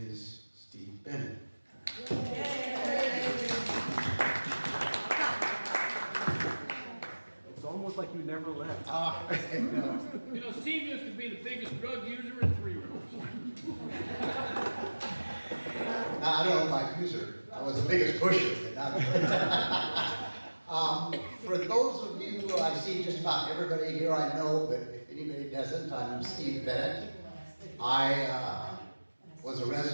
Steve Bennett. It's almost like you never left. No. You know, Steve used to be the biggest drug user in Three Rivers. I don't know about user. I was the biggest pusher. But not for those of you who I see just about everybody here I know, but if anybody doesn't, I'm Steve Bennett. I was a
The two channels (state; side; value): inverted; both; correlation -1.00